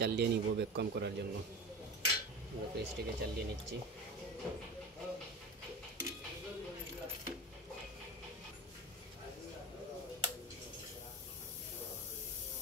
চালিয়ে নিব ভ্যাকুয়াম করার জন্য। আমরা ফ্রিজটিকে চালিয়ে নিচ্ছি।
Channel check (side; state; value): both; normal; correlation 0.30